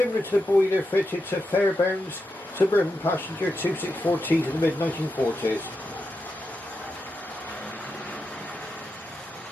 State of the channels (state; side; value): normal; both; correlation 0.87